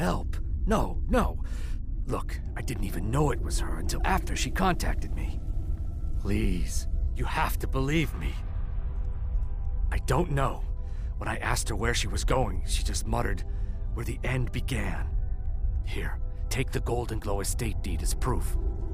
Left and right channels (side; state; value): both; identical; correlation 1.00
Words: No. Look, I didn't even know it was her until after she contacted me. Please, you have to believe me. I don't know. When I asked her where she was going, she just muttered, "Where the end began." Here, take the Golden Glow estate deed as proof.